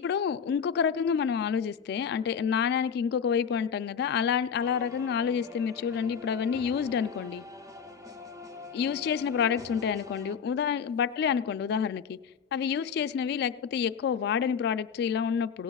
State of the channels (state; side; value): quieter; right; 6.9 dB